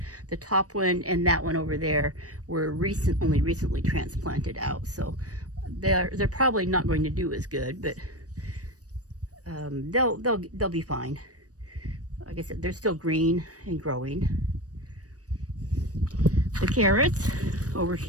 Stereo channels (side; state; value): left; late; 0.66 ms